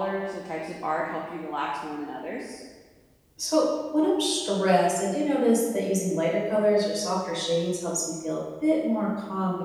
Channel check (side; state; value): both; identical; correlation 1.00